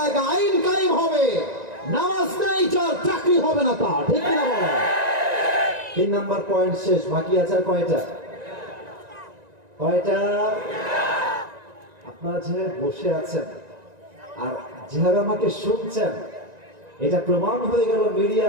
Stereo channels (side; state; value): left; late; 1.9 ms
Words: আইন কায়েম হবে। নামাজ নাই যার চাকরি হবে না তার, ঠিক কিনা বলেন? 3 নাম্বার পয়েন্ট শেষ, বাকি আছে আর কয়টা? আপনারা যেভাবে বসে আছেন আর যেভাবে আমাকে শুনছেন, এটা প্রমাণ হয়ে গেল